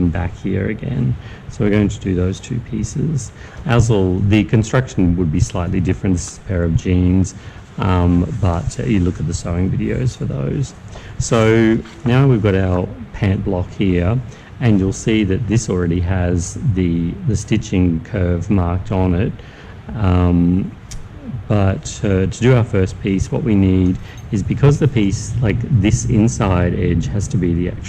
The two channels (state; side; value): identical; both; correlation 1.00